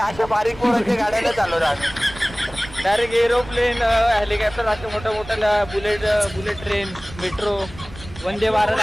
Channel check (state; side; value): noise; right; rumble, 16 dB below the sound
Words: बारीक पोरांच्या गाड्या नाही चालवतात. डायरेक्ट एरोप्लेन हेलिकॉप्टर असे मोठ्या मोठ्या bullet train metro Vande Bharat